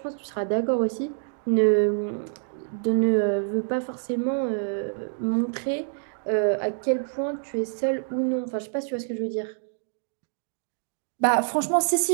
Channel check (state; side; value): silent; left; digital silence